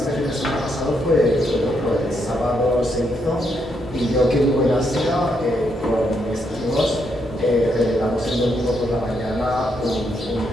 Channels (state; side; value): normal; both; correlation 0.78